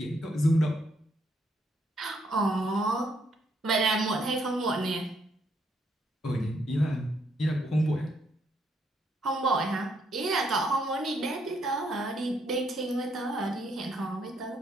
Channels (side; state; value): both; normal; correlation 0.73